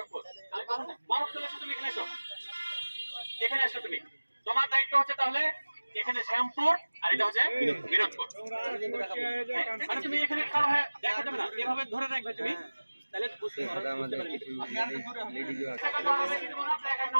তোমার দায়িত্ব হচ্ছে তাহলে এখানে শ্যামপুর আর এটা হচ্ছে বিনোদপুর। মানে তুমি এখানে খাড়া হয়ে দেখা যাবে না, এভাবে ধরে রাখবে তুমি, তাহলে বুঝতে পারবে। আমি আর দূরে হই।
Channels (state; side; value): inverted; both; correlation -1.00